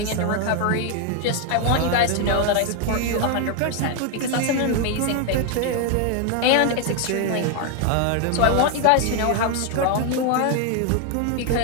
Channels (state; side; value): different; both; correlation 0.01